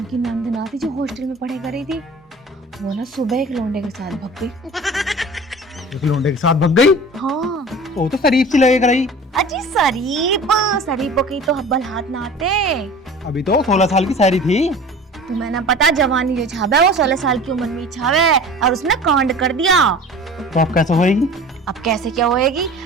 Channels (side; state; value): both; normal; correlation 0.40